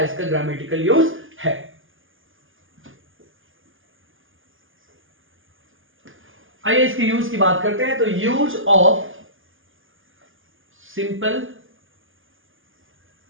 ग्रामेटिकल यूज है। आइए इसके यूज की बात करते हैं। तो use of simple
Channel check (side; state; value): left; late; 0.58 ms